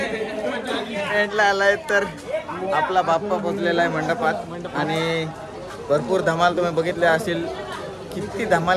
आलाय. तर आपला बाप्पा पोचलेला आहे मंडपात आणि भरपूर धमाल तुम्ही बघितले असेल. किती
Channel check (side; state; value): both; identical; correlation 1.00